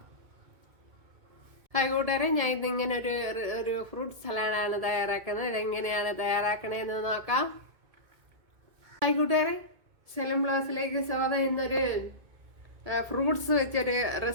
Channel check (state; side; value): late; left; 2.2 ms